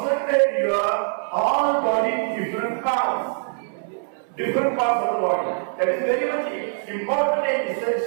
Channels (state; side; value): silent; left; 63 dB below the other